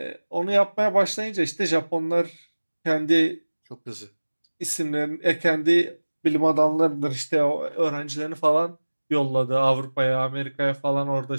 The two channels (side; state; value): both; inverted; correlation -1.00